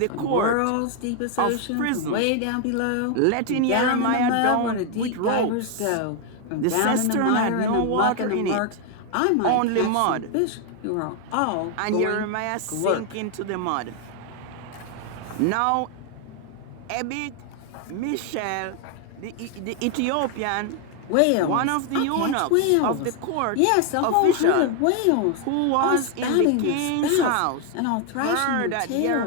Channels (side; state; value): both; different; correlation 0.01